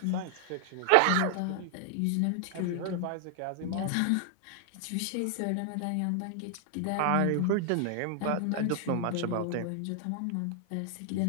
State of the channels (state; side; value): different; both; correlation 0.00